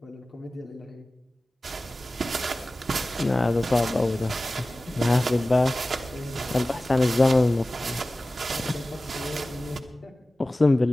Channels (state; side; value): normal; both; correlation 0.96